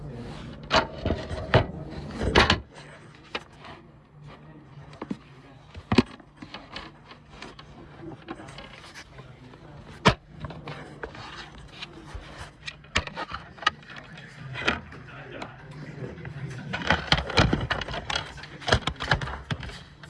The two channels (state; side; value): identical; both; correlation 1.00